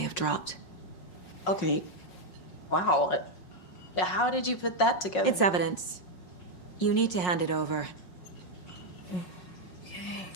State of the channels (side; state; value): right; late; 5.5 ms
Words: dropped. Okay. Wow. How did you put that together? It's evidence. You need to hand it over.